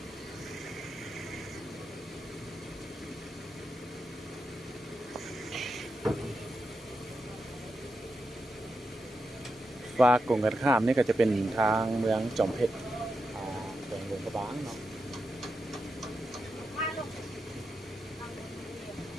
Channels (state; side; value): normal; both; correlation 0.87